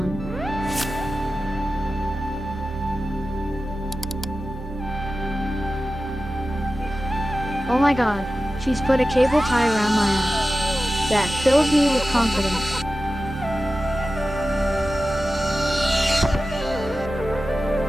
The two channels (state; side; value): normal; both; correlation 0.94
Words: Oh my god, she's put a cable tie around my ass. That fills me with confidence.